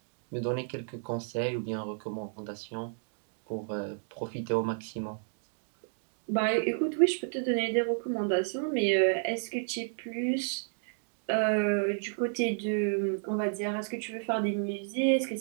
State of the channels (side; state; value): left; silent; digital silence